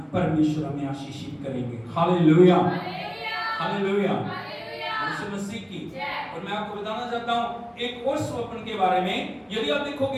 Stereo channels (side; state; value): both; identical; correlation 1.00